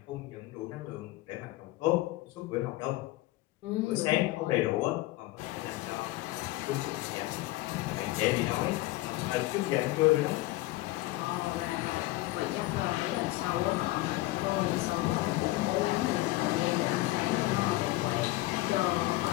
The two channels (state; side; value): quieter; right; 18.5 dB